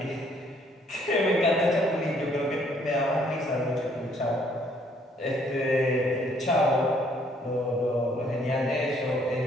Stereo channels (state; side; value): normal; both; correlation 0.65